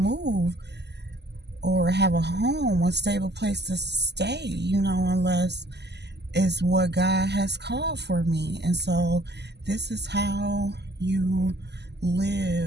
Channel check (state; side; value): late; left; 0.50 ms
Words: or have a home, a stable place to stay, unless it's what God has called for me. And so this is how you